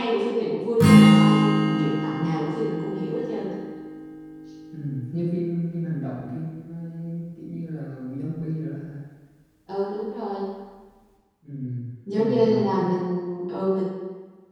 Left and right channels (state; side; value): identical; both; correlation 1.00